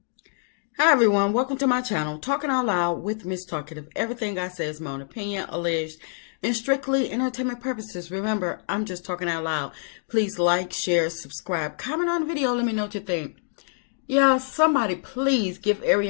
Hi everyone, welcome to my channel, Talking Out Loud with Miss Talkative. Everything I say is my own opinion, alleged, and strictly entertainment purposes. Remember, I'm just talking out loud. Please like, share, subscribe, comment on the video, let me know what you think. Yeah, somebody please give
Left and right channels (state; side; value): silent; right; digital silence